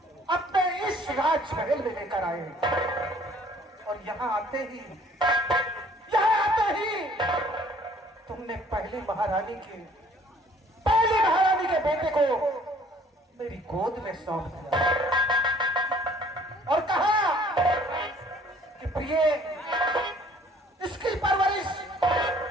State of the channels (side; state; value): both; normal; correlation 0.57